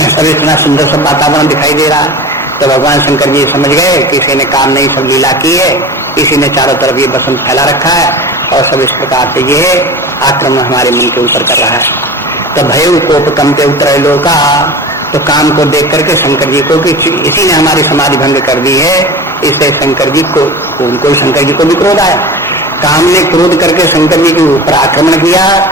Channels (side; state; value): both; normal; correlation 0.34